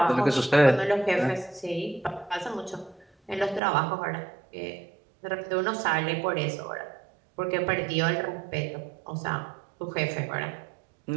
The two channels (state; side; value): drops out; left; at 3.6 s